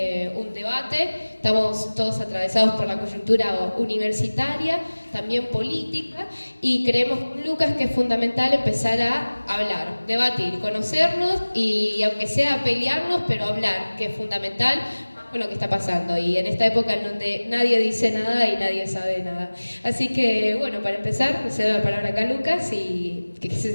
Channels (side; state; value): both; inverted; correlation -1.00